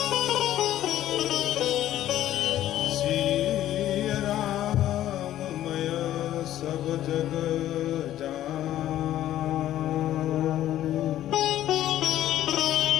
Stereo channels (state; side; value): quieter; right; 12.8 dB